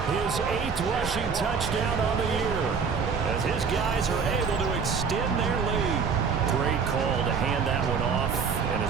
his 8th rushing touchdown on the year, as his guys are able to extend their lead. Great call to hand that one off, and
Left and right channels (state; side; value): quieter; left; 5.8 dB